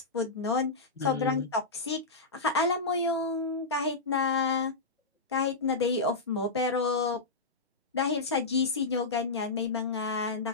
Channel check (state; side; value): quieter; right; 3.6 dB